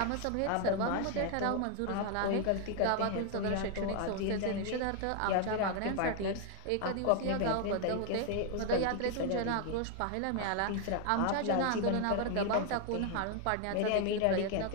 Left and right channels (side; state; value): both; different; correlation 0.01